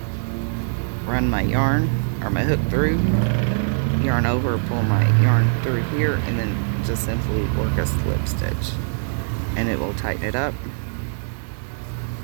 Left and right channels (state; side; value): silent; left; digital silence